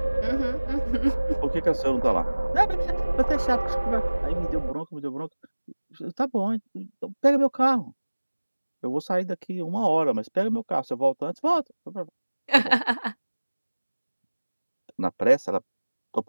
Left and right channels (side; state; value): both; inverted; correlation -1.00